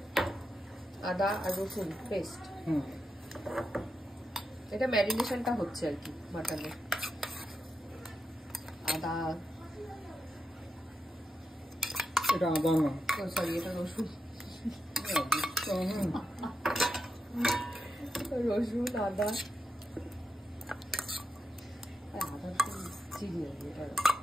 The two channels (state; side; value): normal; both; correlation 0.87